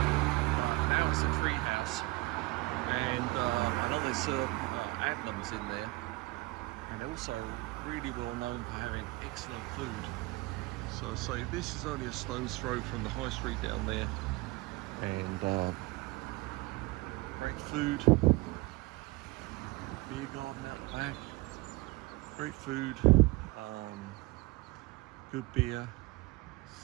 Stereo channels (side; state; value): left; quieter; 22.6 dB